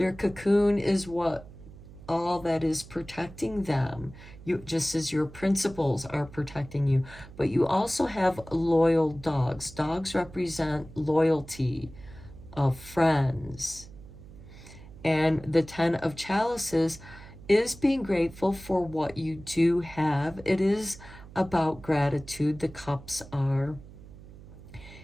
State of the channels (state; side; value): noise; right; hum, 18 dB below the sound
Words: cocoon is all that is protecting them, just as your principles are protecting you. But you also have loyal dogs. Dogs represent loyalty of friends. And the Ten of Chalices is being grateful for what you do have. It is about gratitude, the cups are.